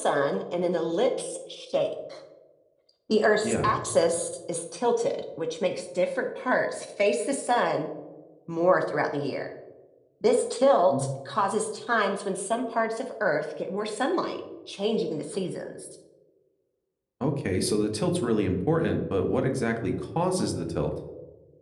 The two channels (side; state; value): both; identical; correlation 1.00